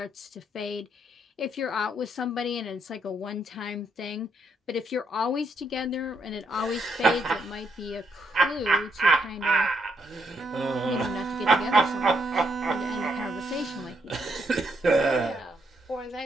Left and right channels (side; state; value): both; normal; correlation 0.76